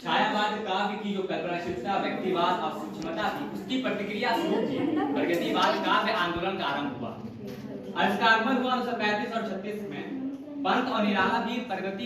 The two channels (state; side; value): identical; both; correlation 1.00